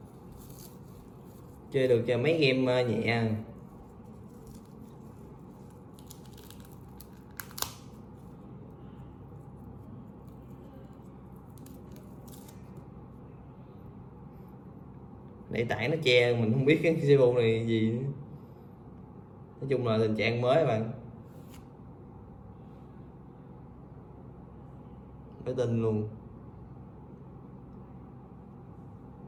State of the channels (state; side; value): identical; both; correlation 1.00